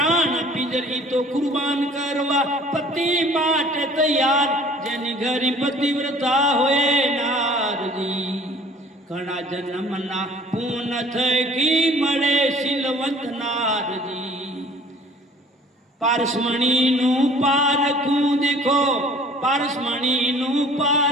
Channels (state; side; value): normal; both; correlation 0.51